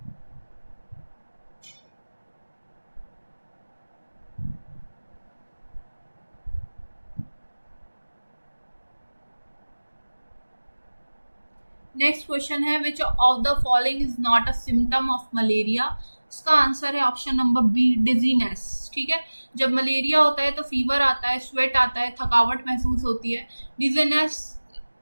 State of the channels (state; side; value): inverted; both; correlation -1.00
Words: Next question है, which of the following is not a symptom of malaria? इसका आंसर है ऑप्शन नंबर बी, डिजीनेस। ठीक है, जब मलेरिया होता है तो फीवर आता है, स्वेट आता है, थकावट महसूस होती है। डिजीनेस